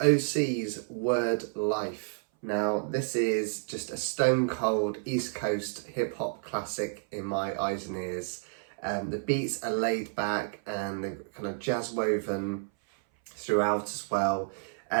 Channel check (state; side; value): silent; left; 58 dB below the other